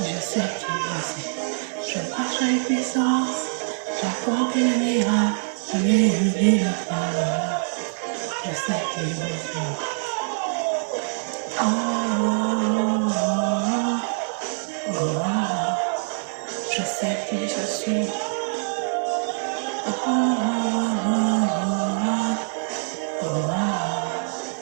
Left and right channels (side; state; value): left; silent; digital silence